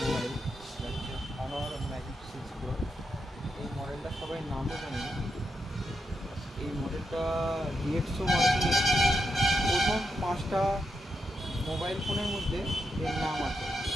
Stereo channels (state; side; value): normal; both; correlation 0.84